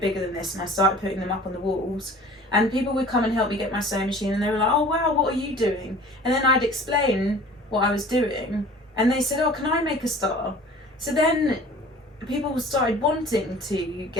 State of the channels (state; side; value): normal; both; correlation 0.45